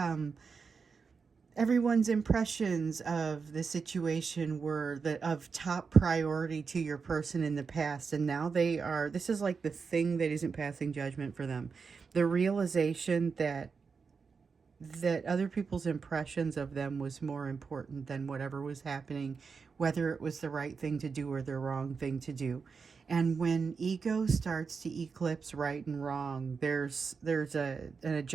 everyone's impressions of the situation were of top priority to your person in the past, and now they are, this is like the thing that isn't passing judgment for them. The realization that other people's impressions of them was more important than whatever was happening, whether it was the right thing to do or the wrong thing to do. And when ego starts to eclipse right and wrong, there's an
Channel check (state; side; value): quieter; left; 5.3 dB